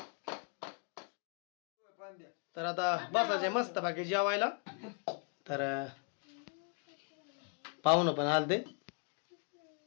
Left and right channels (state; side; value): quieter; right; 39.9 dB